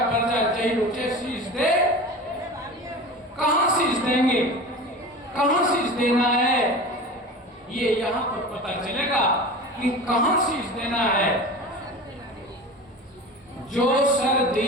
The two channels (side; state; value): both; normal; correlation 0.33